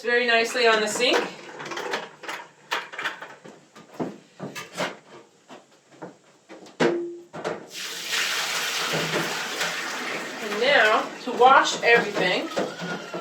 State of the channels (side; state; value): both; identical; correlation 1.00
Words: very nicely on the sink.